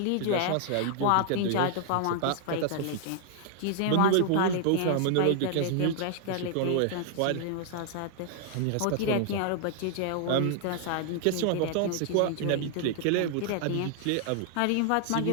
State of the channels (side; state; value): both; different; correlation 0.00